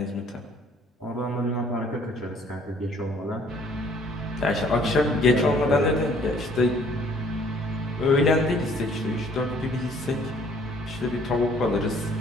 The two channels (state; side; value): normal; both; correlation 0.59